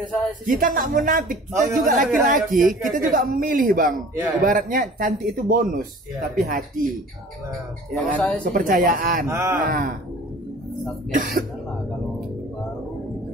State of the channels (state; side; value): normal; both; correlation 0.45